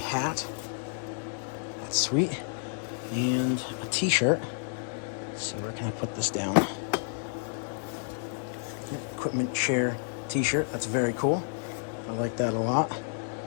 That's sweet. And a t-shirt. Let's see, where can I put this down? Yep, equipment share t-shirt. That's very cool. I like that a lot.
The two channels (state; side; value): silent; right; digital silence